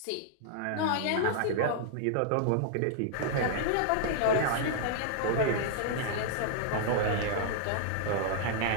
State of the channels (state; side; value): different; both; correlation -0.01